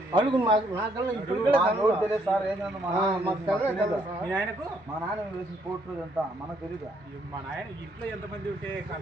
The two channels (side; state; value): both; normal; correlation 0.70